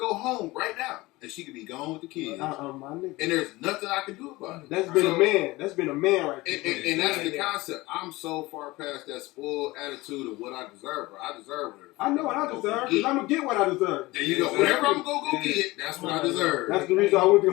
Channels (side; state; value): right; quieter; 20.6 dB